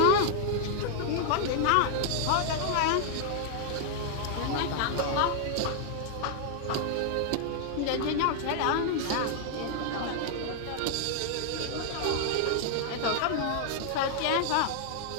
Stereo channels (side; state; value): both; different; correlation 0.00